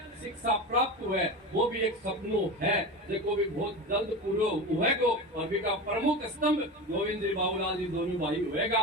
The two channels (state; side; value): normal; both; correlation 0.26